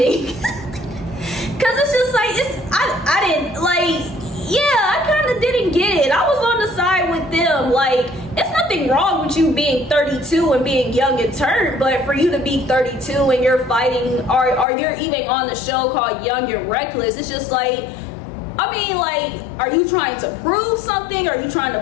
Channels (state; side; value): drops out; right; at 14.7 s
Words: because it's just like, I didn't, like, yeah, I kind of didn't get it. I was on the side with them. Like, it's nothing wrong with you being 32 and being young and turned, but for you to be 32 and you're fighting, or you're even on the show called Young and Reckless, it's just like, I mean, like, are you trying to prove something? Are you trying